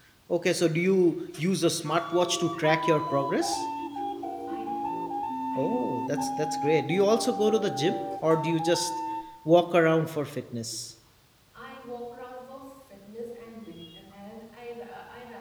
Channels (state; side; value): identical; both; correlation 1.00